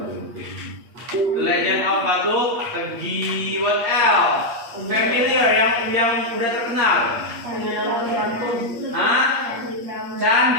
The Legend of Batu Tegi. What else? Familiar yang udah terkenal. Hah?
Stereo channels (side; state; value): left; late; 8.4 ms